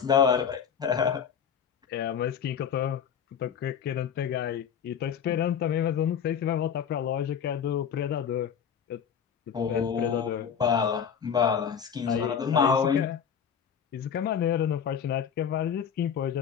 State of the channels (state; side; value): quieter; right; 7.7 dB